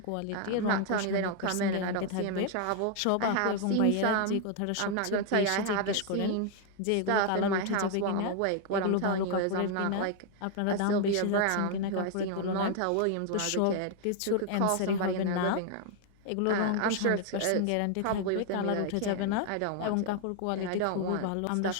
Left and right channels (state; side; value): different; both; correlation 0.00